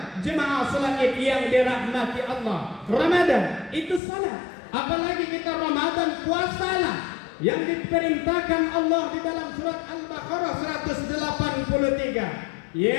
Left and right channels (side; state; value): right; drops out; at 4.0 s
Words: Jemaah salat Id yang dirahmati Allah. Ramadan itu salat. Apalagi kita Ramadan puasalah yang diperintahkan Allah di dalam surat Al-Baqarah 183.